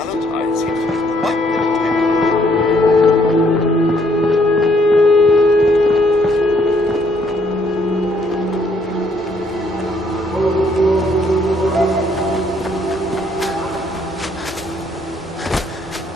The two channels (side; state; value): both; normal; correlation 0.67